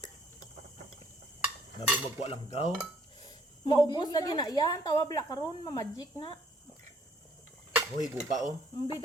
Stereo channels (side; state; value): both; normal; correlation 0.63